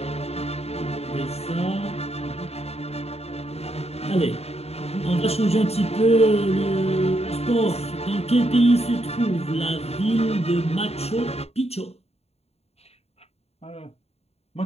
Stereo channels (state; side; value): late; right; 0.30 ms